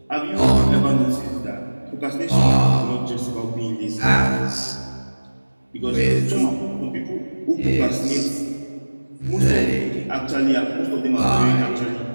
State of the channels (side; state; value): both; inverted; correlation -1.00